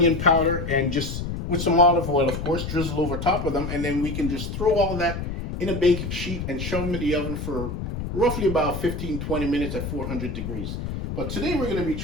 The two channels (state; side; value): noise; left; rumble, 5 dB below the sound